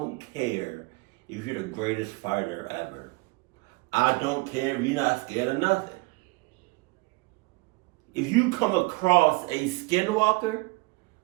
care if you're the greatest fighter ever. I don't care if you're not scared of nothing. If you come across a skinwalker,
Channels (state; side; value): quieter; left; 25.1 dB